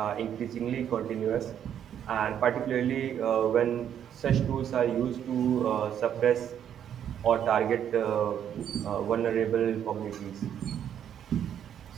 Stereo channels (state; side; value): quieter; left; 9.4 dB